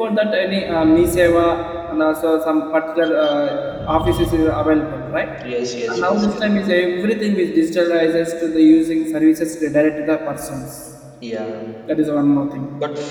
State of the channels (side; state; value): both; identical; correlation 1.00